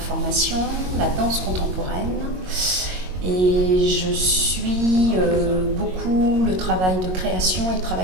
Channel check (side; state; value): left; late; 22 ms